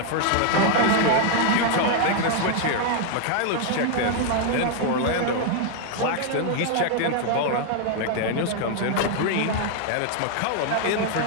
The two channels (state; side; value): different; both; correlation 0.00